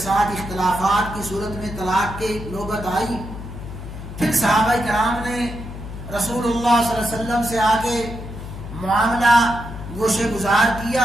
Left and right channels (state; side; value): noise; left; hum, 10 dB below the sound